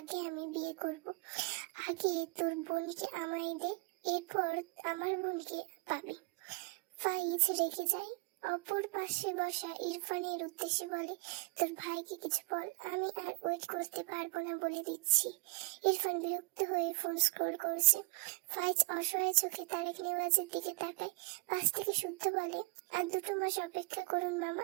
আমি বিয়ে করব। আগে তোর বোনকে আমায় দে, এরপর আমার বোনকে পাবি। ফাইজ রেগে যায়। অপর পাশে বসা ইরফানের উদ্দেশ্যে বলে, তোর ভাইকে কিছু বল, আমি আর ওয়েট করতে পারবো না বলে দিচ্ছি। ইরফান বিরক্ত হয়ে ফোন স্ক্রল করছে। ফাইজ অসহায় চোখে তারেক নেওয়াজের দিকে তাকায়। পাশ থেকে শুদ্ধ বলে, আর 2 মাস অপেক্ষা করুন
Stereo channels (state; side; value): quieter; left; 28.3 dB